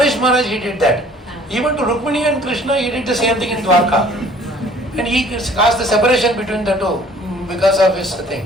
Maharaj, he did that. Even to Rukmini and Krishna, he did the same thing in Dwarka. And he caused the separation between the two because of his thing.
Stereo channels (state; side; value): normal; both; correlation 0.54